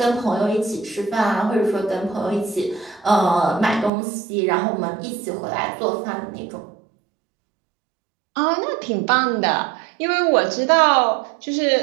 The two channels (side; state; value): left; drops out; at 3.9 s